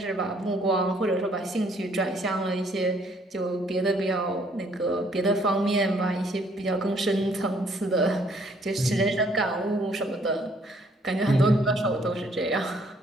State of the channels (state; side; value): normal; both; correlation 0.64